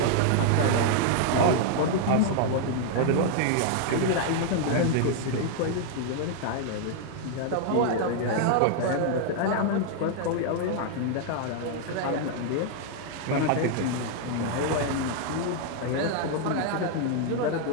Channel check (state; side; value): different; both; correlation 0.00